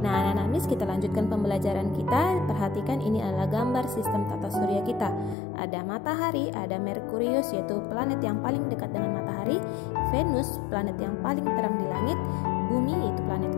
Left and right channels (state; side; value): drops out; right; at 5.4 s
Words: Nah, anak-anak Miss, kita lanjutkan pembelajaran kita. Perhatikan ini adalah gambar sistem tata surya kita. Ada matahari, ada Merkurius yaitu planet yang paling dekat dengan matahari, Venus planet yang paling terang di langit, Bumi yaitu planet